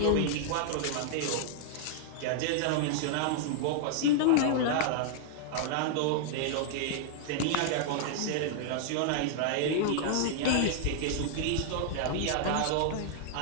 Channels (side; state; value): both; different; correlation -0.01